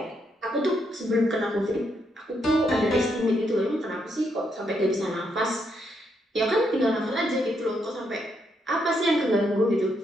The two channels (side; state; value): both; normal; correlation 0.77